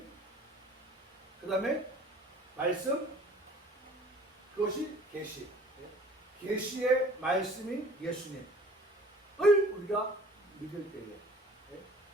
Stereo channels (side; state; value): both; normal; correlation 0.50